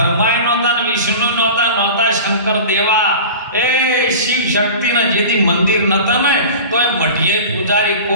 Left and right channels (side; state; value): both; inverted; correlation -0.35